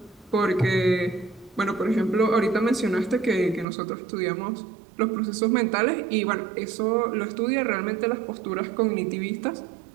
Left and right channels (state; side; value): drops out; left; at 3.7 s